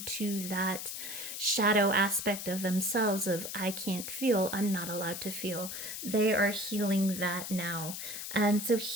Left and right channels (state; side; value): noise; left; hiss, 7 dB below the sound